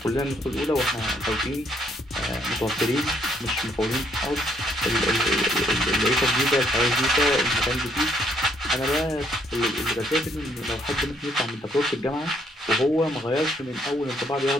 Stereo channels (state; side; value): normal; both; correlation 0.70